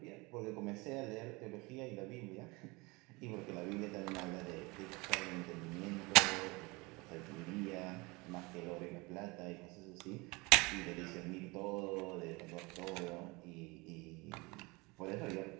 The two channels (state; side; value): quieter; left; 25.3 dB